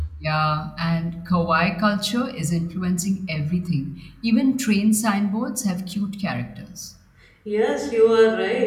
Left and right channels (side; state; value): both; identical; correlation 1.00